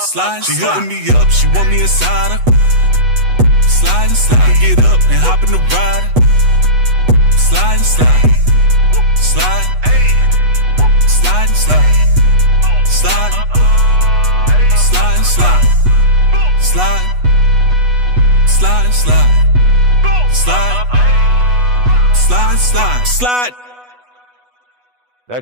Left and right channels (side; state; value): left; late; 8.1 ms